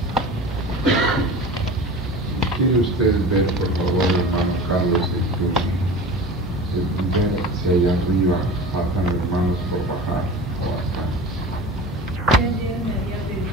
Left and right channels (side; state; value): both; normal; correlation 0.35